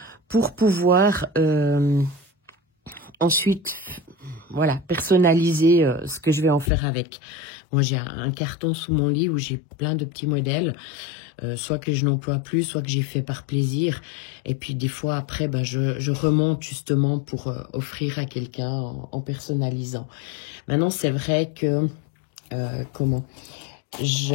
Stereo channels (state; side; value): drops out; right; at 6.7 s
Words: pour pouvoir ensuite, voilà, personnaliser ce que je vais en faire avec. Moi, j'ai un carton sous mon lit où j'ai plein de petits modèles, soit que je n'emploie plus, soit que j'ai fait par plaisir. Et puis des fois après, ben, je remonte justement pour offrir à quelqu'un en personnalisant. Maintenant, c'est vrai que,